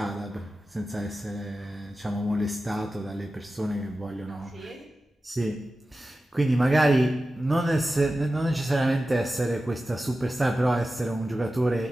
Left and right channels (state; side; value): normal; both; correlation 0.94